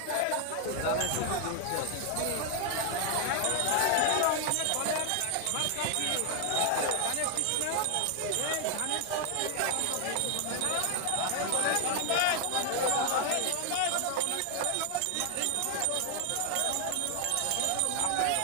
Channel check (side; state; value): both; different; correlation 0.00